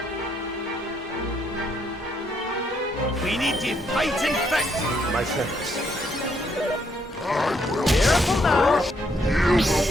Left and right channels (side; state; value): both; normal; correlation 0.72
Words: We need to fight and fit! My friends. I will Careful now! use